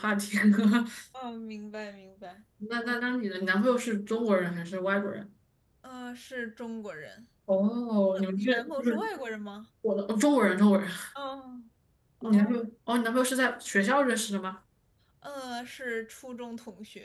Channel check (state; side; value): identical; both; correlation 1.00